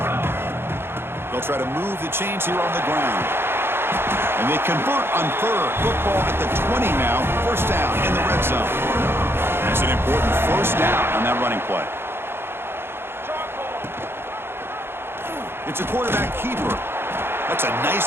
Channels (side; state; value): left; late; 0.11 ms